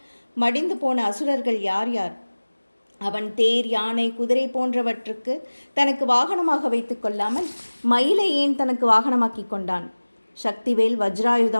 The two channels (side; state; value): both; inverted; correlation -1.00